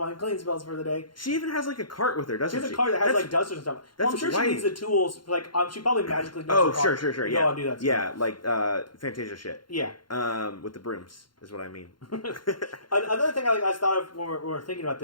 clean spells for the day. She even has like a cart with her, doesn't she? She has a cart that has like dusters and stuff. Well, I'm sure she needs the tools. Like, she probably magically knows sure. Yeah. Go and do that stuff. Yeah, like Fantasia shit. Yeah. With the brooms, is what I mean. Another thing I thought of when we were thinking about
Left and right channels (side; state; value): right; late; 0.72 ms